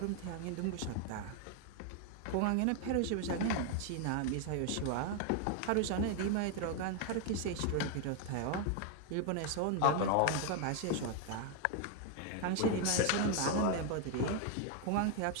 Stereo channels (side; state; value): both; different; correlation 0.00